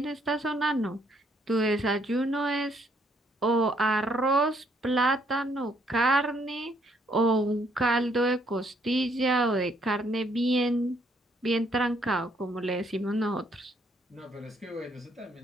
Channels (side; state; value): both; normal; correlation 0.69